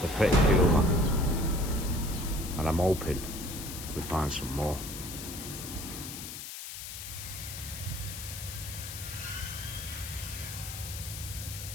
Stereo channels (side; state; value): left; noise; hiss, 9 dB below the sound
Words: they're pretty cool, man. And I'm hoping we find some more.